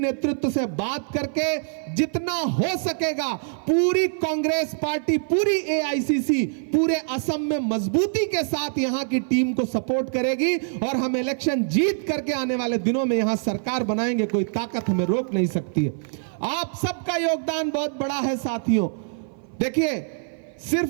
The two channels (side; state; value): left; silent; 56 dB below the other